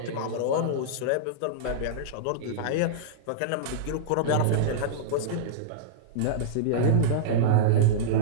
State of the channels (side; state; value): both; different; correlation -0.03